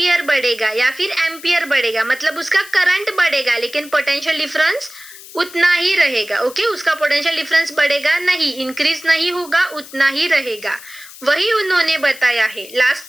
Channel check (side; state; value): left; noise; hiss, 17 dB below the sound